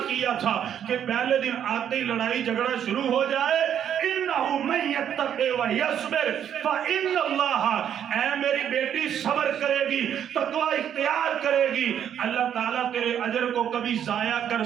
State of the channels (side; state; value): left; quieter; 9.3 dB